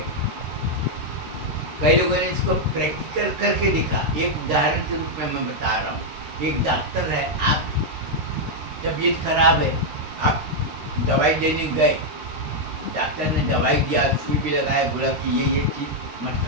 कई लोगों ने इसको प्रैक्टिकल करके दिखा। एक उदाहरण के रूप में मैं बता रहा हूँ। एक डॉक्टर है, आप तबीयत खराब है, आप दवाई लेने गए, डॉक्टर ने दवाई दिया, सुई भी लगाया, बोला कि ये चीज़ मत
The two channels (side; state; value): left; late; 13 ms